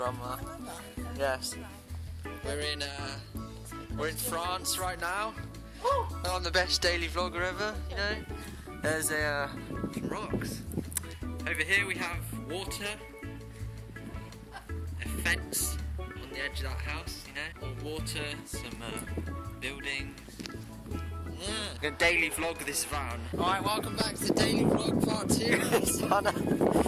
Yes. We're in France right now. I'm the best daily vlogger ever, you know. There's some rocks. Over here we have water, a fence on the edge of that house, you know. More water, some buildings. Yeah. I'm gonna daily vlog this van. Alright, welcome back to the daily vlog part 2. It's Hannah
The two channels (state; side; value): identical; both; correlation 1.00